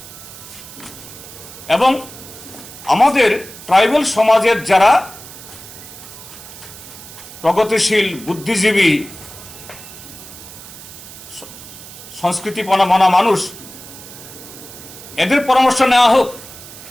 এবং আমাদের ট্রাইবেল সমাজের যারা প্রগতিশীল, বুদ্ধিজীবী, সংস্কৃতিপনা মানা মানুষ, এদের পরামর্শ নেওয়া হোক।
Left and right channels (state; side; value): noise; right; hiss, 16 dB below the sound